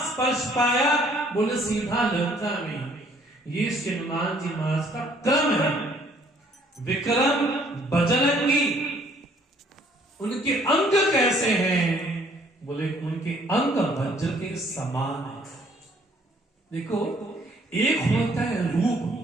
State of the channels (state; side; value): normal; both; correlation 0.61